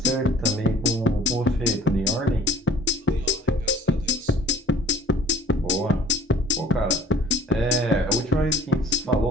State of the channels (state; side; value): normal; both; correlation 0.52